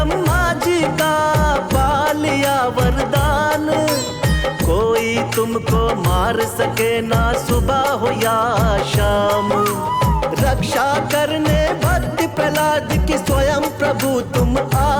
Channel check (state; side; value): identical; both; correlation 1.00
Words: जी का पा लिया वरदान, कोई तुमको मार सके ना सुबह हो या शाम। रक्षा करने भक्त प्रहलाद की स्वयं प्रभु तुम